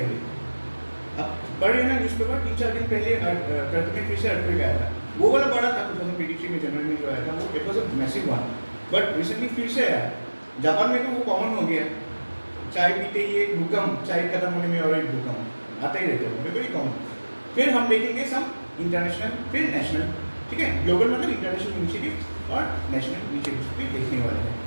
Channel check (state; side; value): inverted; both; correlation -1.00